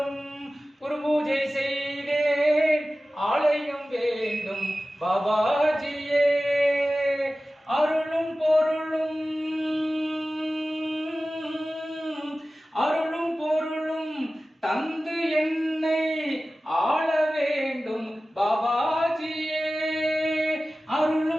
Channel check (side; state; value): both; normal; correlation 0.96